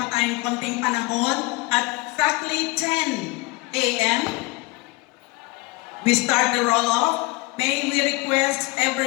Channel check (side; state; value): right; quieter; 23.9 dB